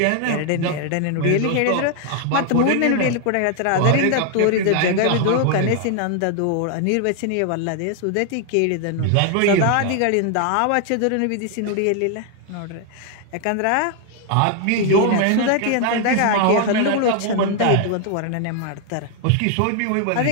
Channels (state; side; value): different; both; correlation 0.00